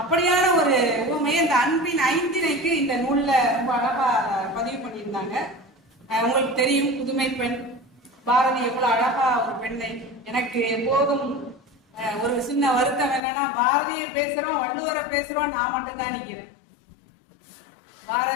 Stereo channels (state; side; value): drops out; right; at 13.2 s